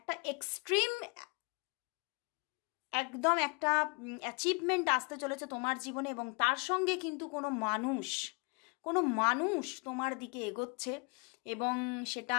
এক্সট্রিম একদম একটা অ্যাচিভমেন্ট আসতে চলেছে তোমার জীবনে। এবং তার সঙ্গে কিন্তু কোনো মানুষ তোমার দিকে এগোচ্ছে, এবং সেটা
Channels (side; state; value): right; quieter; 33.0 dB